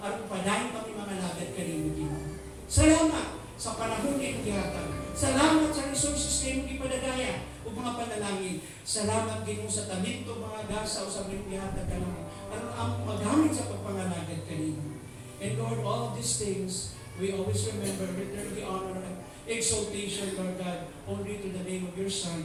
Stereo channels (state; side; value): identical; both; correlation 1.00